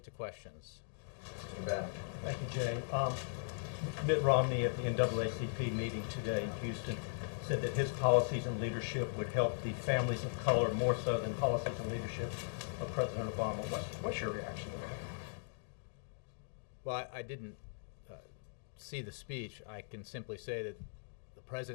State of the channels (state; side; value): silent; right; digital silence